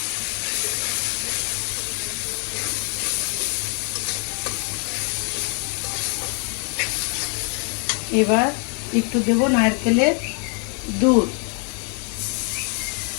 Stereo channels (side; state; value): right; quieter; 38.5 dB